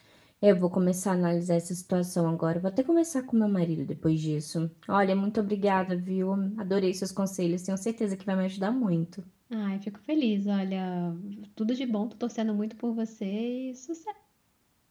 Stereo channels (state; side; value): identical; both; correlation 1.00